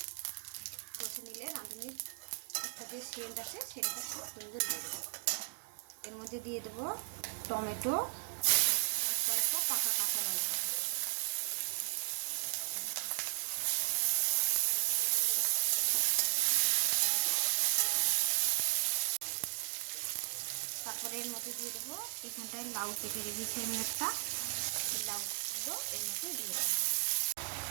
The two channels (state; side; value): silent; left; digital silence